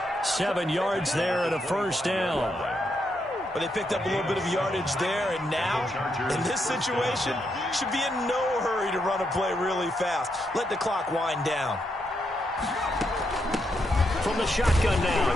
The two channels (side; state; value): both; normal; correlation 0.80